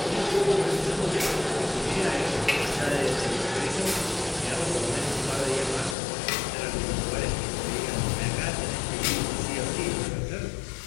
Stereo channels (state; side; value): drops out; right; at 6.0 s